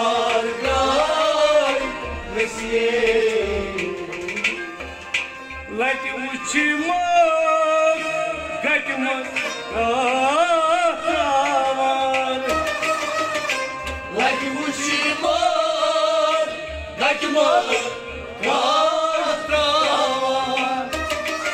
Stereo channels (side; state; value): both; identical; correlation 1.00